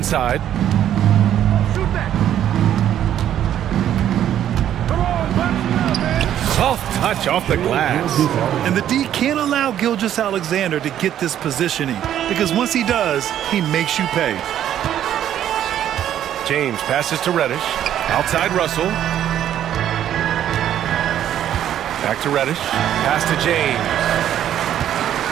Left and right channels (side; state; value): left; quieter; 10.9 dB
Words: Soft touch off the glass. And the D can't allow Gilgeous-Alexander to get this positioning, because once he does, he makes you pay. James passes to Reddish. Outside Russell. Back to Reddish. Pass to James.